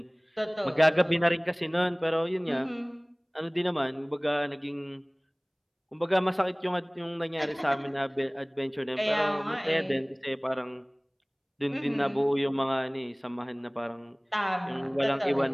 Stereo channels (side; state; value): both; identical; correlation 1.00